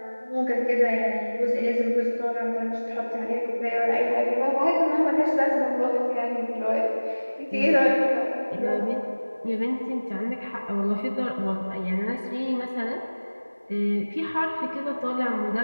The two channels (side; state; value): both; inverted; correlation -1.00